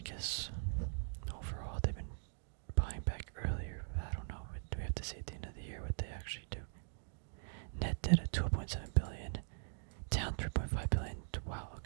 overall they've been buying back earlier. I don't know. Do we have to see at the end of the year what they actually do? Net debt at 2.7 billion, down 3.5 billion. Wow,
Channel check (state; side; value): silent; left; digital silence